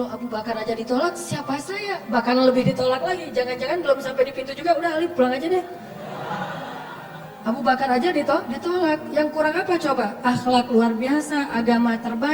Abu Bakar aja ditolak, siapa saya? Bahkan lebih ditolak lagi. Jangan-jangan belum sampai di pintu juga, udah Ali pulang aja deh. Abu Bakar aja ditolak. Yang kurang apa coba? Akhlak luar biasa, agama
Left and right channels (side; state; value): both; identical; correlation 1.00